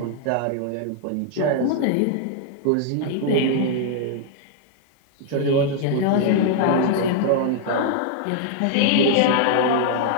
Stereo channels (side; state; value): both; different; correlation -0.01